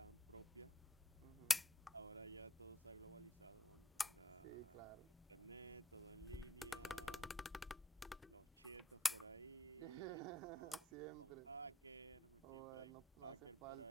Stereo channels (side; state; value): both; normal; correlation 0.70